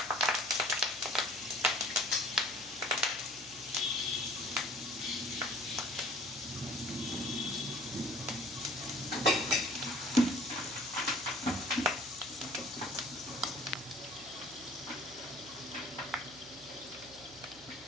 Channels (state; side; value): noise; right; hum, 22 dB below the sound